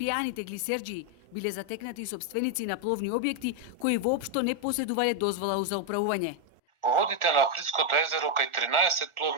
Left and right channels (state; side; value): late; left; 1.4 ms